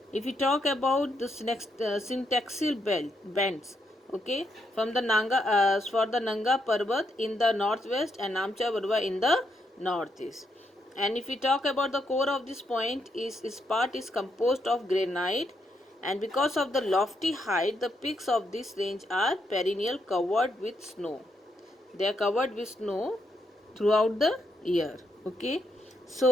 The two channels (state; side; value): normal; both; correlation 0.79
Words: If we talk about the syntaxial bends, okay, from the Nanga Parbat in the northwest and Namcha Parbat in the northeast. And if we talk about the core of this point, is part is composed of granite, and because of the lofty height, the peaks of this range are perennial covered with snow. They are covered with snow throughout the year. Okay,